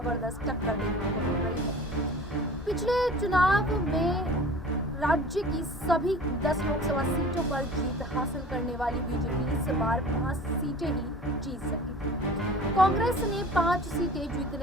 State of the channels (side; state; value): both; normal; correlation 0.42